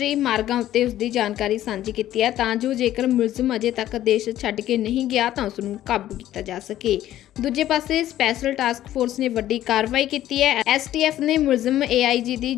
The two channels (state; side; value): quieter; right; 13.1 dB